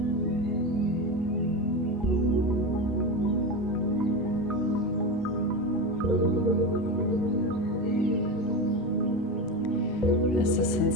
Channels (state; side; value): normal; both; correlation 0.20